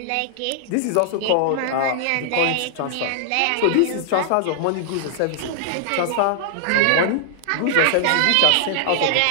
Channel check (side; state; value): both; different; correlation -0.01